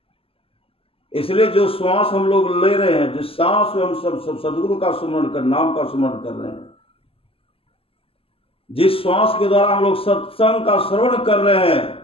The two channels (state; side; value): late; right; 0.27 ms